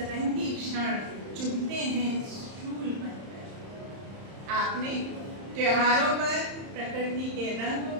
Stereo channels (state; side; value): late; left; 31 ms